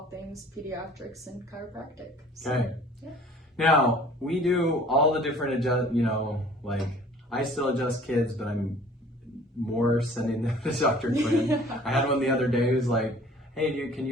things pediatrics and chiropractic. So, okay. Yeah. Now, we do all the different like I still adjust kids, but I'm more sending them to Dr. Quinn. I had one the other day who's like, hey, can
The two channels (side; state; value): both; normal; correlation 0.50